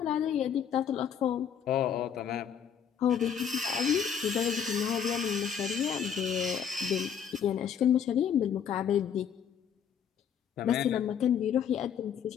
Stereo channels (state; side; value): quieter; right; 8.1 dB